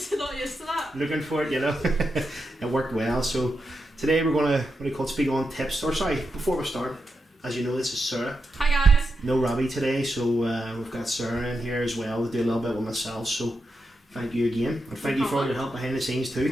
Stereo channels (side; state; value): both; normal; correlation 0.87